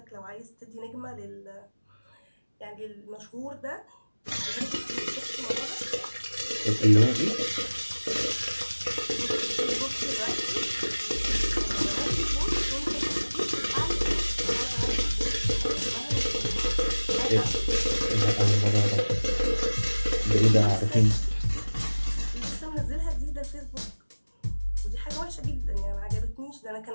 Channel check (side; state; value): both; inverted; correlation -1.00